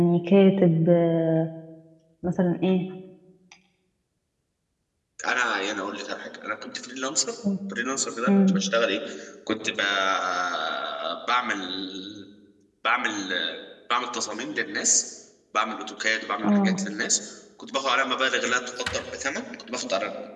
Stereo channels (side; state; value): both; identical; correlation 1.00